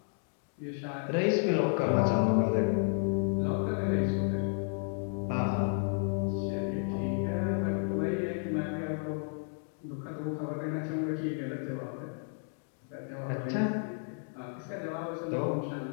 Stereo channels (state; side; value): silent; right; 56 dB below the other